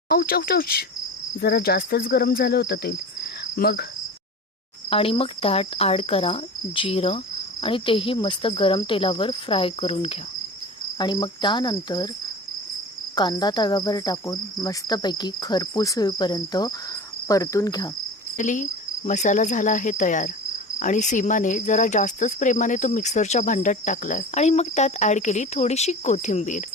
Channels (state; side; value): normal; both; correlation 0.34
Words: औच औच औच, जरा जास्तच गरम झालं होतं तेल। मग त्यात ॲड करा जिरं आणि तेही मस्त गरम तेलावर फ्राय करून घ्या। आणि मग त्यानंतर कांदा तव्यावर टाकून मस्तपैकी खरपूस होईपर्यंत परतून घ्या। मसाला झाला आहे तयार आणि सीमाने जरा जास्तच प्रेमाने तो मिक्सरच्या भांड्यात टाकलाय आणि मग त्यात ॲड केली थोडीशी कोथिंबीर